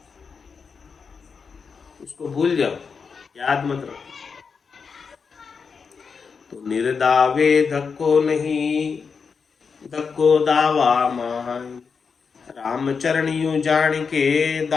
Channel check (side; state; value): right; quieter; 5.6 dB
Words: उसको भूल जाओ, याद मत रखो। तो निर्दावे धक्को नहीं धक्को दावा माय। राम चरण यूं जान के